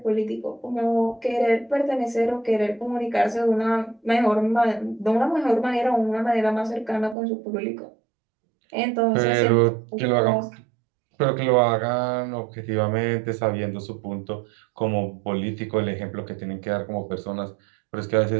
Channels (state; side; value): drops out; left; at 7.2 s